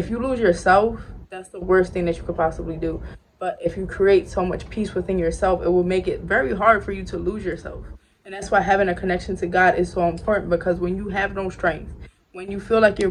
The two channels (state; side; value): identical; both; correlation 1.00